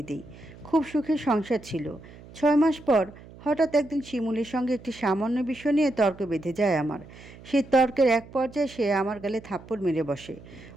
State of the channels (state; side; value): noise; right; hum, 19 dB below the sound